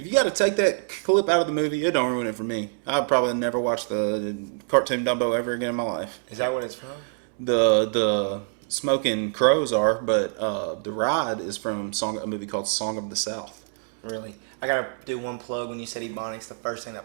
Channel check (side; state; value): left; silent; digital silence